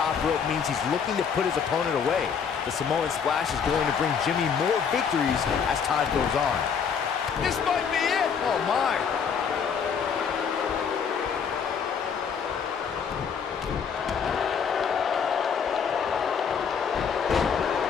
rope means he's looking to put his opponent away. The Samoan splash is going to bring Jimmy more victories as time goes on. This might be it! Oh my!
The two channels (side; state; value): right; quieter; 6.8 dB